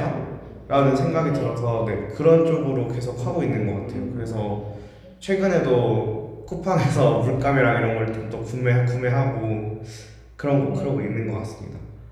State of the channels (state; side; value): identical; both; correlation 1.00